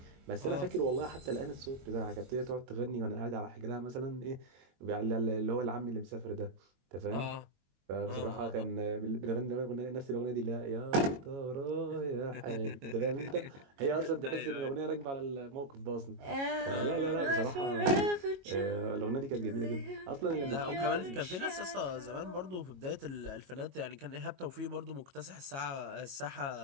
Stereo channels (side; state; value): left; late; 22 ms